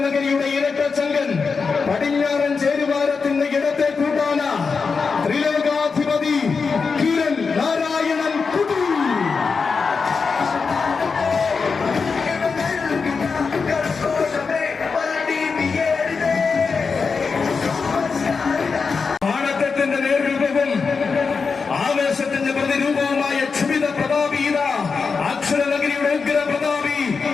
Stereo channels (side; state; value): right; quieter; 5.0 dB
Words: ഇരട്ടച്ചങ്കൻ, പടിഞ്ഞാറൻ ചേരുവാരത്തിന്റെ ഇടത്തെ കൂട്ടാന ത്രിലോകാധിപതി കിരൺ നാരായണൻ കുട്ടി. ആവേശത്തിന്റെ പ്രതിരൂപവുമായ ക്ഷുഭിത പ്രതാപീത അക്ഷരനഗരിയുടെ ഉഗ്ര പ്രതാപി